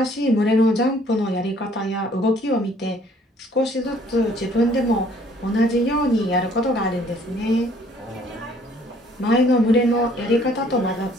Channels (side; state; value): both; normal; correlation 0.60